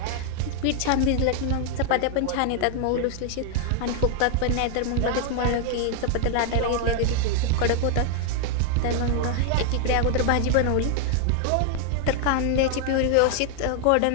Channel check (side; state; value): both; different; correlation 0.00